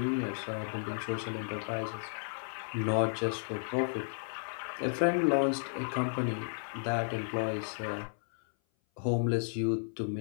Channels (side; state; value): right; silent; 56 dB below the other